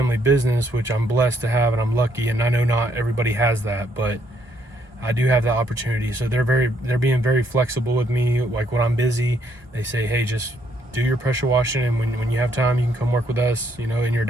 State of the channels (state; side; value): normal; both; correlation 0.70